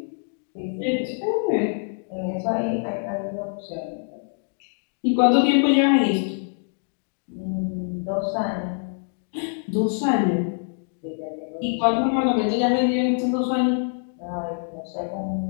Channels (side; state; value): right; silent; digital silence